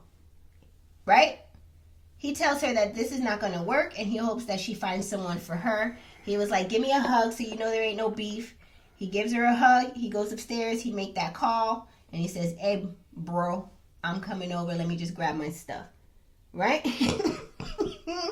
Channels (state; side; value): identical; both; correlation 1.00